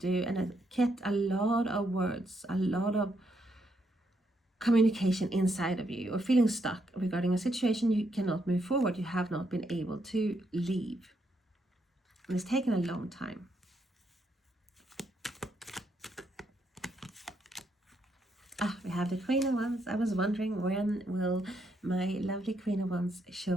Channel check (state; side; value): normal; both; correlation 0.77